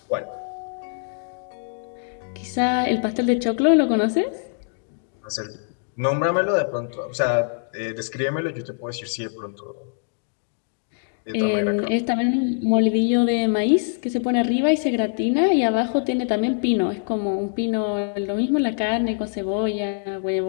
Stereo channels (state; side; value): silent; right; digital silence